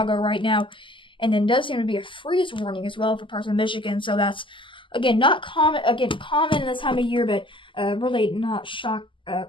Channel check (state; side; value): late; right; 0.25 ms